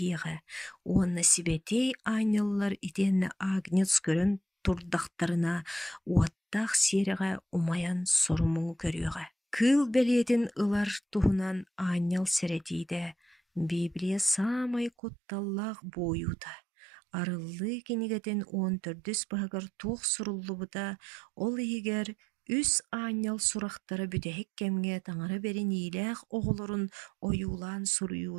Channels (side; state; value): left; drops out; at 14.9 s